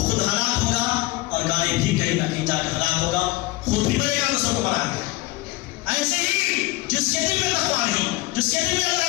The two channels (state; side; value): quieter; right; 19.3 dB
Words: خود ہلاک ہوگا، اور گاڑی بھی کہیں نہ کہیں جا کے ہلاک ہوگا، خود بھی بڑے گا، دوسروں کو بڑھا گا. ایسے ہی جس کے دل میں تقویٰ نہیں، جس کے دل میں